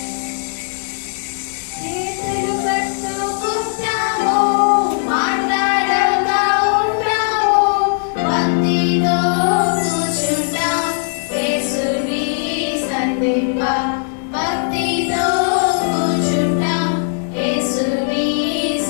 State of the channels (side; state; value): right; silent; digital silence